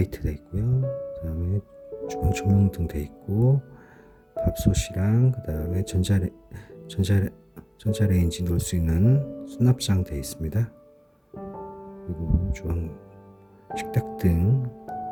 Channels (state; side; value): identical; both; correlation 1.00